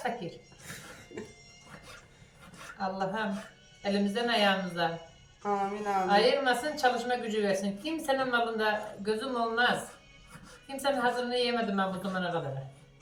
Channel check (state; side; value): identical; both; correlation 1.00